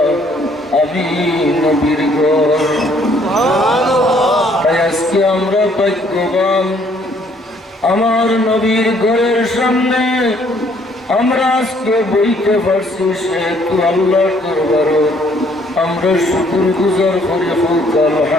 আমি নবীর ঘর। তাই আজকে আমরা ভাগ্যবান, আমার নবীর ঘরের সামনে আমরা আজকে বইতে পারছি, সেহেতু আল্লাহর দরবারে আমরা শুকর গুজার করে হোক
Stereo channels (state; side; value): normal; both; correlation 0.64